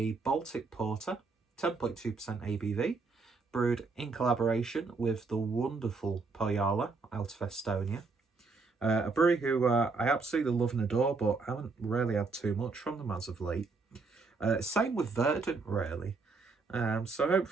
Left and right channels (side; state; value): left; quieter; 4.2 dB